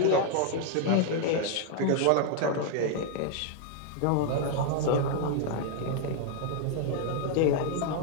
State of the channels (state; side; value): different; both; correlation 0.00